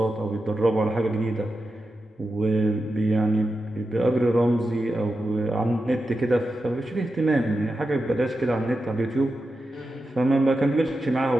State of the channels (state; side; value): normal; both; correlation 0.90